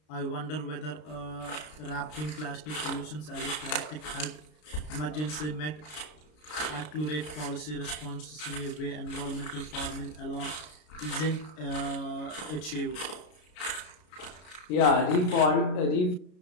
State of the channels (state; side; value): late; right; 33 ms